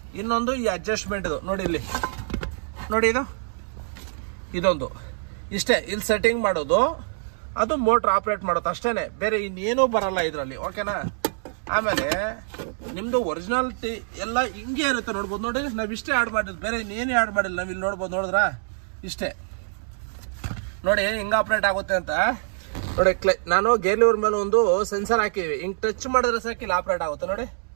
ಇನ್ನೊಂದು ಈ ಅಡ್ಜಸ್ಟ್ಮೆಂಟ್ದು ನೋಡಿ, ಇಲ್ಲಿ ನೋಡಿ, ಇದೊಂದು ಇಷ್ಟೇ, ಇಲ್ಲಿ ಸೆಟ್ಟಿಂಗ್ ಮಾಡೋದು, ಅದು ಮೋಟ್ರ್ ಆಪ್ರೇಟ್ ಮಾಡೋದು ಅಷ್ಟೇ, ಬೇರೆ ಇನ್ನೇನೂ ಬರಲ್ಲ ಇದರಲ್ಲಿ, ಓಕೆನಾ? ಆಮೇಲೆ ನಿಮ್ಮದು ಒರಿಜಿನಾಲಿಟಿ ಎಲ್ಲ ಹಿಂಗೆ ಇರುತ್ತೆ, ನೋಡ್ಬೋದು ನೋಡಿ, ನಾವು ಇಷ್ಟೇ ಆ್ಯಡ್ ಮಾಡಿದ್ದು, ಬೇರೆ ಇನ್ನೇನು ಆ್ಯಡ್ ಮಾಡಿಲ್ಲ. ನಾವು ಇಲ್ಲಿ ನೋಡ್ಬೋದು, ನೋಡಿದ್ರಾ ಇಷ್ಟೇ ನೋಡಿ ಹಿಂಗೆ ಆಪ್ರೇಟ್ ಆಗುತ್ತೆ ಅಂತ ನೋಡಿ. ನಾನು ಗೇರ್ ಲಿವರ್ ಮೇಲೆ ಒಂದು ಸೆನ್ಸರ್ ಹಾಕಿವಿ, ಹಿಂಗೆ ಟಚ್ ಮಾಡಿದ್ರೆ ಸಾಕು ಇಲ್ಲಿ ಆಪ್ರೇಟ್ ಆಗುತ್ತೆ ನೋಡಿ,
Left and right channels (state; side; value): silent; left; digital silence